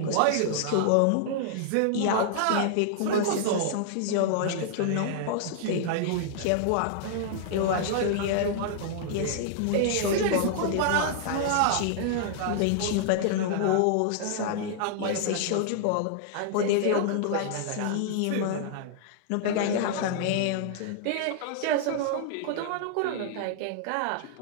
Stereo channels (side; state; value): both; different; correlation -0.01